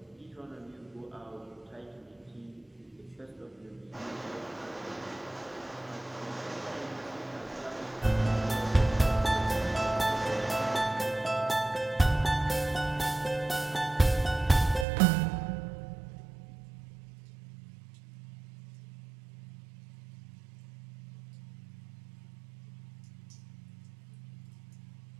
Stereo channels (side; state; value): left; drops out; at 14.9 s